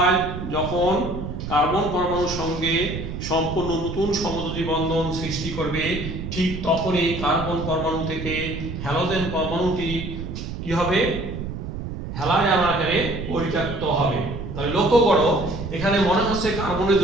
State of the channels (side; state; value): right; noise; rumble, 7 dB below the sound